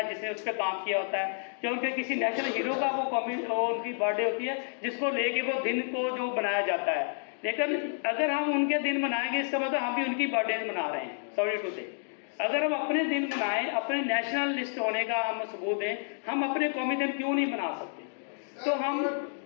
जिसने उस पर काम किया होता है, या उनके किसी नेशनल हीरो का वो उनकी बर्थडे होती है जिसको लेके वो दिन को जो बनाया जाता है। लेकिन अगर हम उनके दिन मनाएंगे, इसका मतलब हम भी उनकी बर्थडे मना रहे हैं। सॉरी टू से, अगर हम अपने दिन मनाएं, अपने नेशनल लिस्ट होने का हम सबूत दें, हम अपने कौमी दिन क्यों नहीं मना सकते? तो हम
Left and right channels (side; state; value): right; silent; digital silence